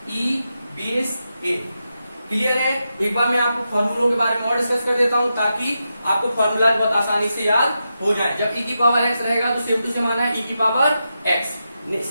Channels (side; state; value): both; inverted; correlation -0.88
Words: e base a। Clear है। एक बार मैं आपको फॉर्मूलों के बारे में और डिस्कस कर देता हूँ ताकि आपको फॉर्मूला बहुत आसानी से याद हो जाए। जब e की पावर x रहेगा तो सेम टू सेम आना है e की पावर x।